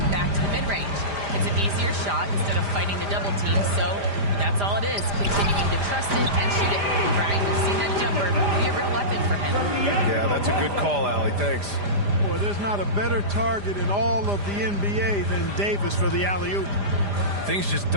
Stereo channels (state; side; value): late; left; 5.0 ms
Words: back to the mid-range. It's an easier shot instead of fighting the double team, so that's all it is, continuing to trust it and shoot it. Brian, we've seen that jumper be a real weapon for him. Yeah, that's a good call, Allie. Thanks. Boy, there's not a better target in all of the NBA than Davis for the alley-oop. Things just